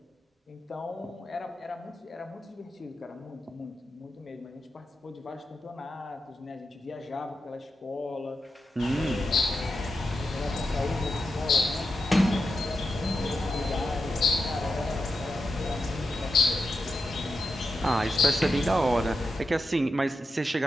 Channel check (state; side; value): normal; both; correlation 0.88